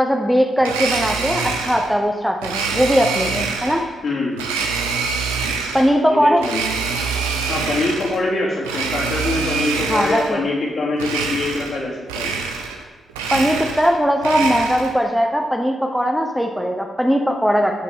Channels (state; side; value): normal; both; correlation 0.83